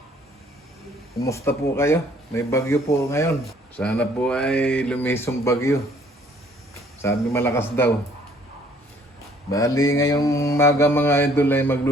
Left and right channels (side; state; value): both; normal; correlation 0.60